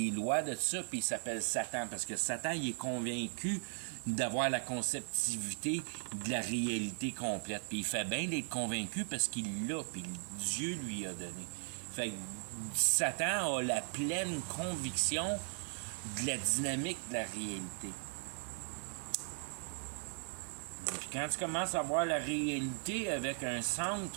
lois de ça, puis il s'appelle Satan. Parce que Satan, il est convaincu d'avoir la conceptivité de la réalité complète. Puis il fait bien d'être convaincu parce qu'il l'a, puis Dieu lui a donné. Fait que Satan a la pleine conviction de la dynamique de la réalité. Puis quand tu commences à voir la réalité avec un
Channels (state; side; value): silent; left; 52 dB below the other